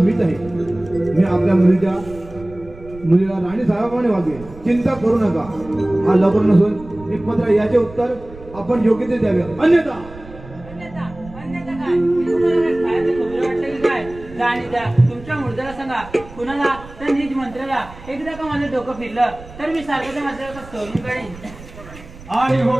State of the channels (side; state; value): right; noise; rumble, 18 dB below the sound